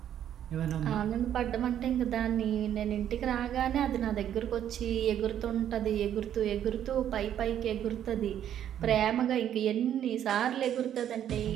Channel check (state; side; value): quieter; left; 10.4 dB